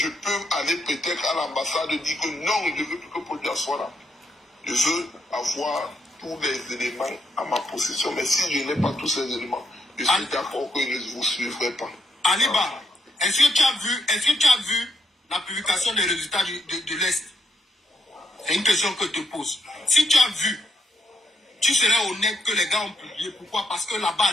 peux aller peut-être à l'ambassade et dire que non, je veux que Paul Biya soit là. Je veux avoir tous les éléments à ma possession. Mais si je n'ai pas tous ces éléments, je suis d'accord que je ne vous suivrai pas. Aliba, est-ce que tu as vu la publication des résultats de l'Est? C'est une question que je te pose. Si tu as vu, tu serais honnête que les gars ont publié. Pourquoi? Parce que là-bas à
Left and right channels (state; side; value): normal; both; correlation 0.79